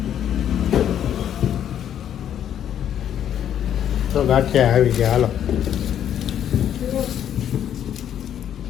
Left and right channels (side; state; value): right; quieter; 10.0 dB